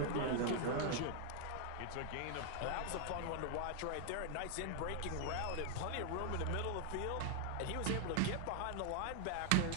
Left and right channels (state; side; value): different; both; correlation 0.00